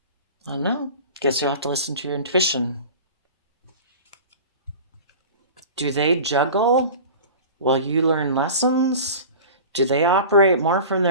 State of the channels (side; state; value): both; inverted; correlation -0.37